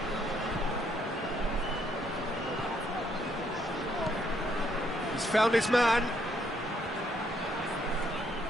He's found his man.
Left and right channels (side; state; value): both; normal; correlation 0.71